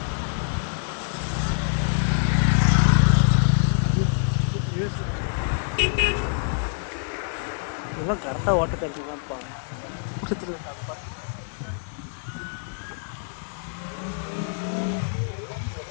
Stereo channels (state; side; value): silent; right; digital silence